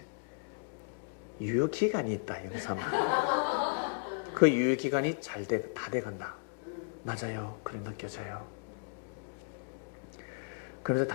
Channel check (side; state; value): right; silent; digital silence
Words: 유효기간이 있다. 영삼아. 그 유효기간이 다 돼간다. 맞아요. 그래 느껴져요. 그래서